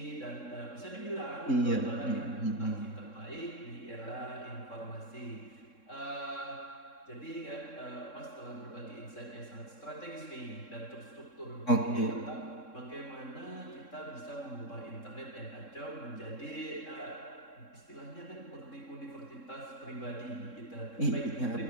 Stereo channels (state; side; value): late; right; 3.7 ms